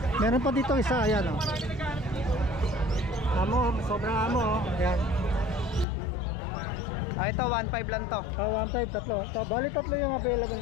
Meron pa dito isa, ayan, oh. Amo, sobrang amo, oh. Ayan. Ito, 1.5 lang to. 1.5, tatlo. Bali tatlo yung available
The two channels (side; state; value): right; drops out; at 5.9 s